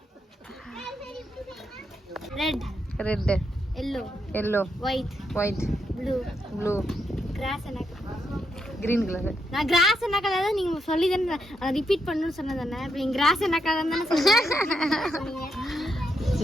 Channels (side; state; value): both; normal; correlation 0.81